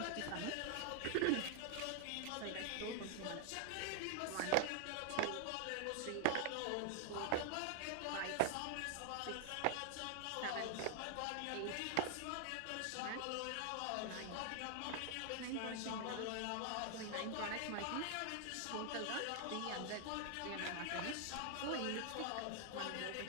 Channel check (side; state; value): both; different; correlation 0.00